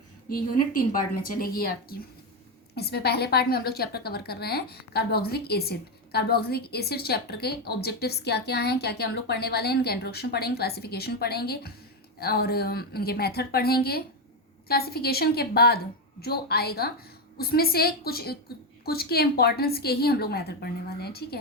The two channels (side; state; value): both; normal; correlation 0.08